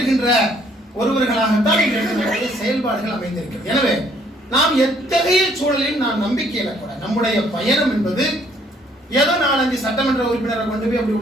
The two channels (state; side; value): normal; both; correlation 0.64